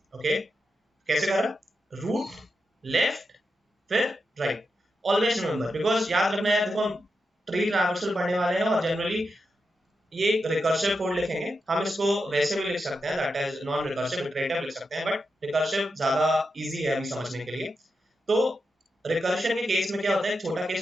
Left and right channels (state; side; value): normal; both; correlation 0.87